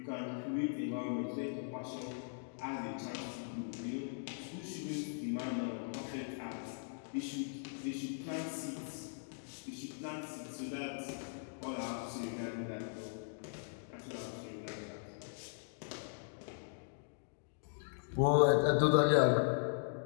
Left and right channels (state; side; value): silent; right; digital silence